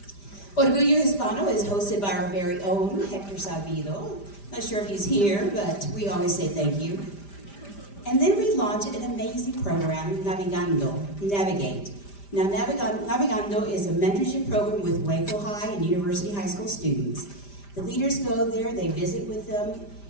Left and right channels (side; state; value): right; late; 5.0 ms